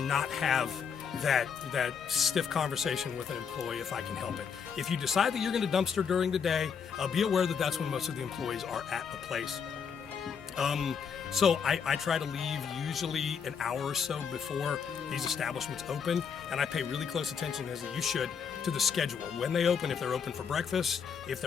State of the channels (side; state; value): right; quieter; 6.7 dB